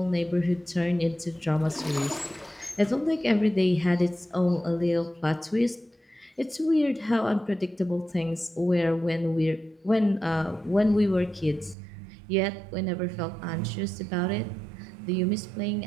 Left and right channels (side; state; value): left; drops out; at 11.8 s